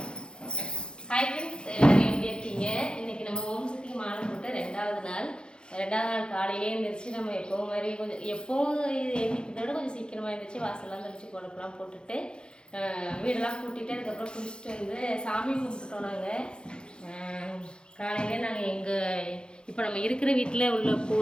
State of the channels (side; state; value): right; late; 0.050 ms